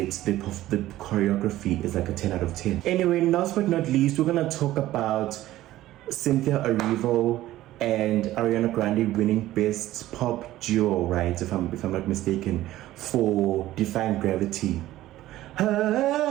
the choreography is like a 10 out of 10. Anyway, last but not least, we're gonna talk about Cynthia Erivo and Ariana Grande winning Best Pop Duo, right? If I'm not mistaken, for Defying Gravity.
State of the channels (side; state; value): left; quieter; 15.1 dB